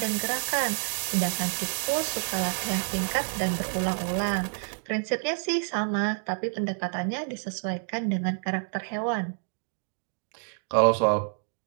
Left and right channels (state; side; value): silent; left; digital silence